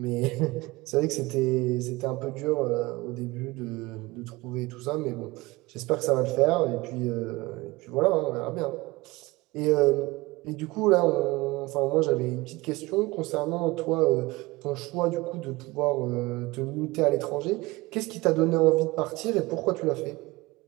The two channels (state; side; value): quieter; left; 21.7 dB